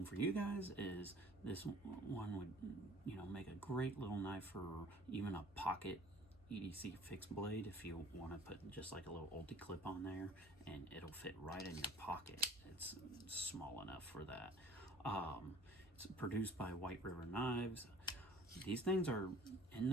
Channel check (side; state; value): both; normal; correlation 0.50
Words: for you guys is this one would, you know, make a great little knife for even a pocket EDC fixed blade if you want to put just like a little ulti clip on there, and it'll fit right in your pocket. It's small enough for that. It's produced by White River Knives. These things are in